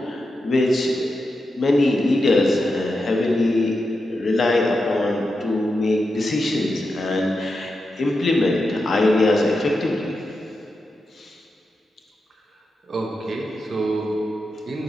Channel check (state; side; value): normal; both; correlation 0.88